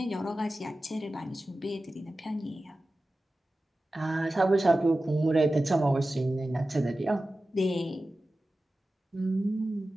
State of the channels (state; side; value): normal; both; correlation 0.95